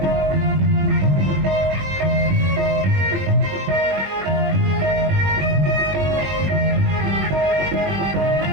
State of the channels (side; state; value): left; late; 21 ms